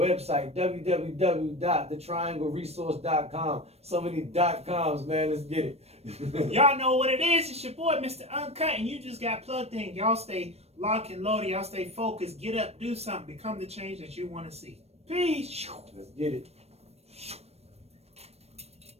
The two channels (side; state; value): left; late; 0.31 ms